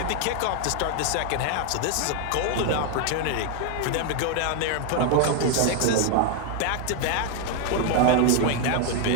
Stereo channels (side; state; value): both; different; correlation 0.00